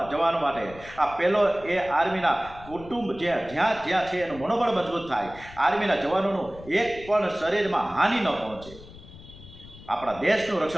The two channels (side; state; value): left; noise; rumble, 18 dB below the sound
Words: માટે. આ પહેલો એ આર્મીના કુટુંબ જ્યાં છે એનું મનોબળ મજબૂત થાય, આર્મીના જવાનોનું એક પણ શરીરમાં હાનિ ન પહોંચે, આપણા દેશનું